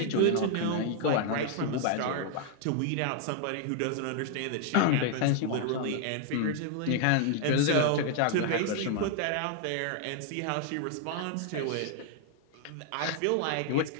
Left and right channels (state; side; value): different; both; correlation 0.00